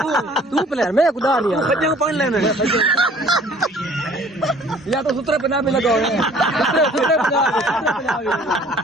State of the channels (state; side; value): normal; both; correlation 0.54